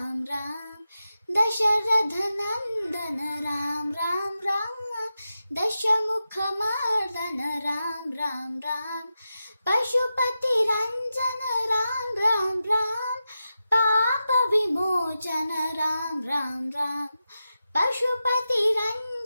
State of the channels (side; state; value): both; inverted; correlation -0.91